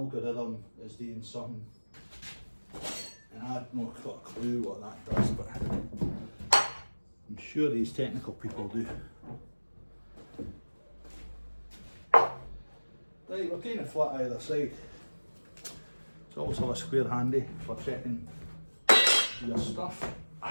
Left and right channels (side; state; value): both; inverted; correlation -1.00